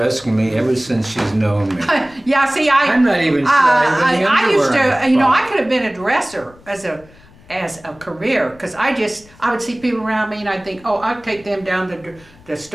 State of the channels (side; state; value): left; noise; rumble, 25 dB below the sound